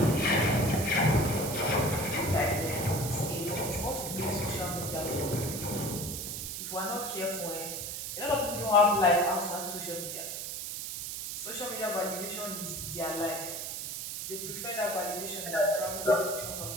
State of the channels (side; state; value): right; noise; hiss, 5 dB below the sound